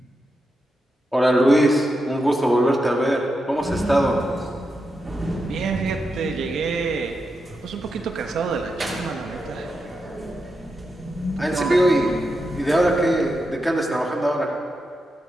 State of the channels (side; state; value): both; normal; correlation 0.87